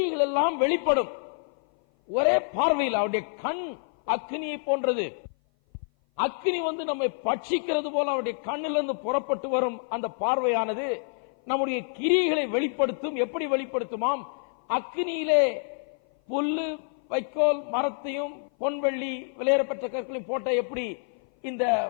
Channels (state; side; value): silent; right; 56 dB below the other